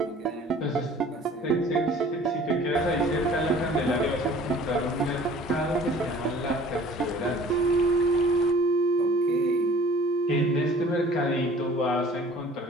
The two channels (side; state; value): both; normal; correlation 0.50